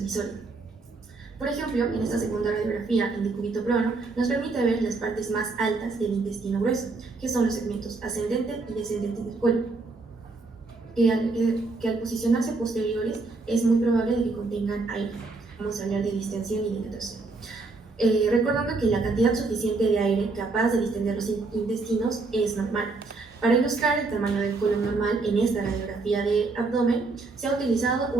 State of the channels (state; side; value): quieter; left; 3.7 dB